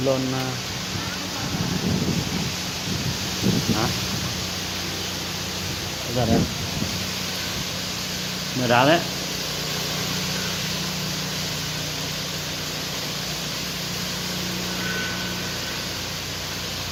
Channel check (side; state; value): both; identical; correlation 1.00